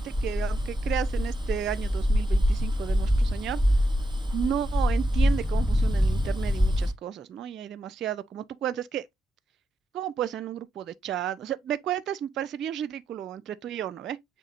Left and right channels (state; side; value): normal; both; correlation 0.84